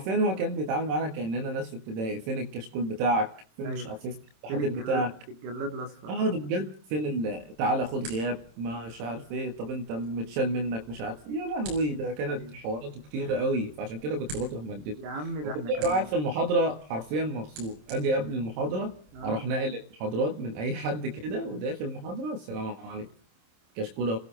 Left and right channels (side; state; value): left; late; 27 ms